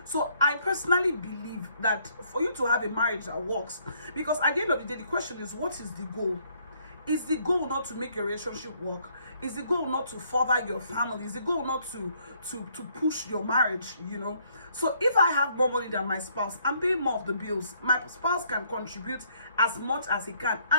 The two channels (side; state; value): both; inverted; correlation -0.67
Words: So I personally believe that for you to have a marriage that works, because at the end of the day, the question is, what is the goal? Is the goal not to make your relationship work? Is the goal not to further your family? Is the goal not to push your marriage, you know? So if I have more money than my spouse, I'm paying more of the bills. My spouse can contribute as much as he can.